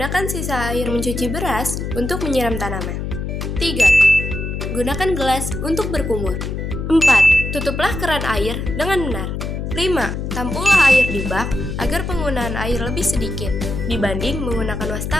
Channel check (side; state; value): left; noise; hum, 4 dB below the sound